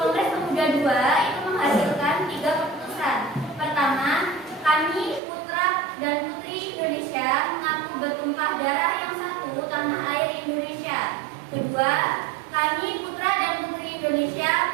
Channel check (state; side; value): drops out; left; at 5.2 s